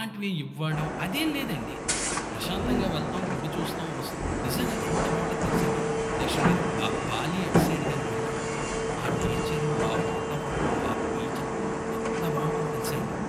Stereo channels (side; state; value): both; identical; correlation 1.00